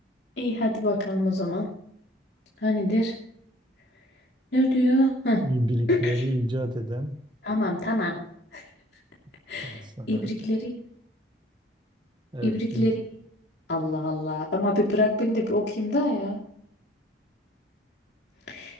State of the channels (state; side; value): normal; both; correlation 0.54